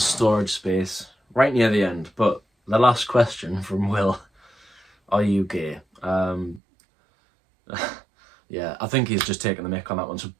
storage space right near the end. But the last question from Will, are you gay? Yeah, I think he's just taking the mick on that one. So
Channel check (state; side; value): drops out; left; at 6.6 s